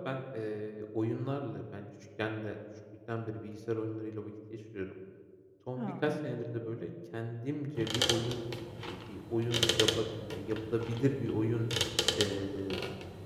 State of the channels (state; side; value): identical; both; correlation 1.00